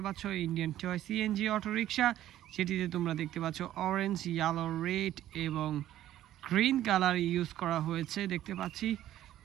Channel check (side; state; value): left; quieter; 12.9 dB